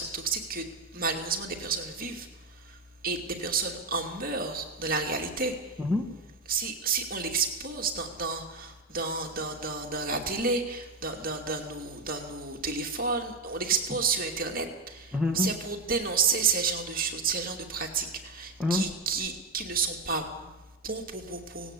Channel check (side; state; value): left; quieter; 3.4 dB